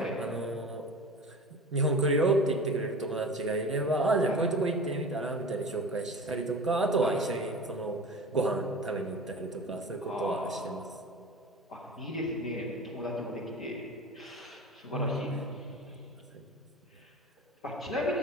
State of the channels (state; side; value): normal; both; correlation 0.35